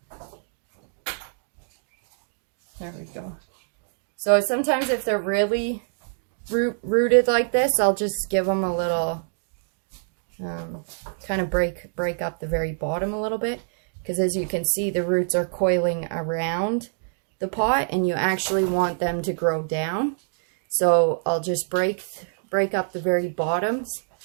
There we go. So sometimes if they're really rooted like this, I'll just give them a little, kind of break up the very bottom a little bit. Because as you can see, the roots are coiling around the pot, and you actually want them to grow down. So I'll just break up the very bottoms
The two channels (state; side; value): silent; left; digital silence